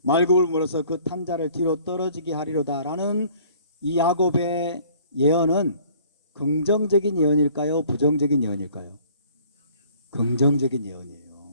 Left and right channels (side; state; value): both; inverted; correlation -0.55